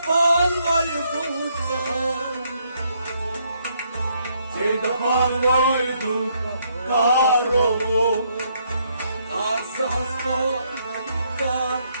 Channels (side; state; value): both; inverted; correlation -0.72